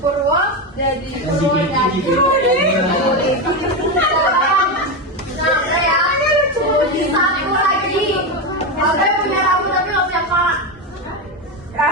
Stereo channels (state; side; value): normal; both; correlation 0.13